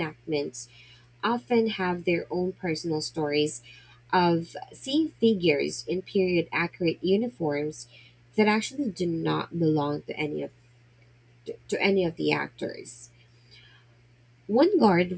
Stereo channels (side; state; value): both; identical; correlation 1.00